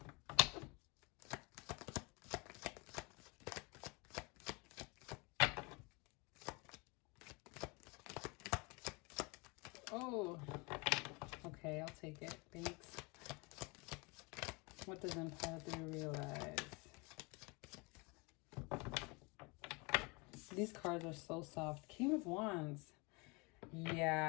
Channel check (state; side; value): quieter; right; 28.6 dB